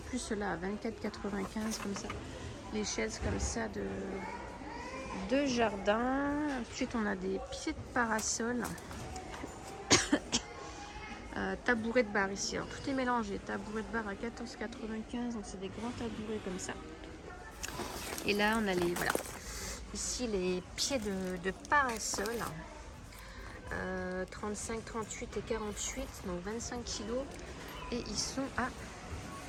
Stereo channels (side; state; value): both; identical; correlation 1.00